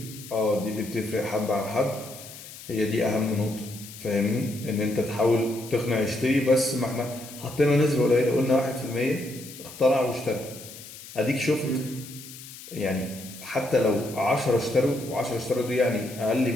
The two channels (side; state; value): left; noise; hiss, 15 dB below the sound